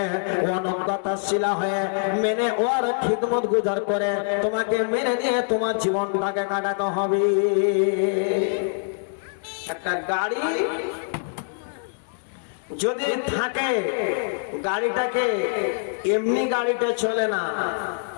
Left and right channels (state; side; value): silent; right; 62 dB below the other